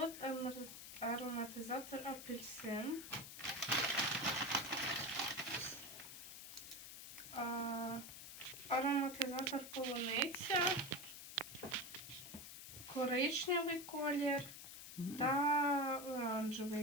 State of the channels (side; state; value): left; noise; hiss, 11 dB below the sound